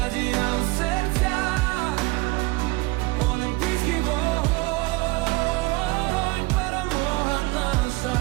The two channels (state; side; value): quieter; left; 22.8 dB